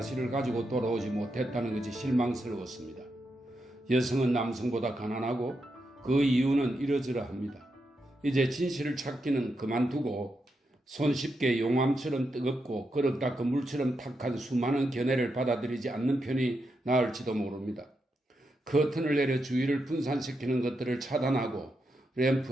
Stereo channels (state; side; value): normal; both; correlation 0.84